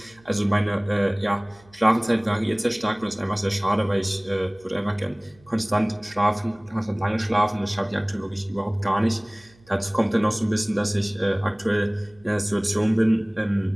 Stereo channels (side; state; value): right; noise; hum, 29 dB below the sound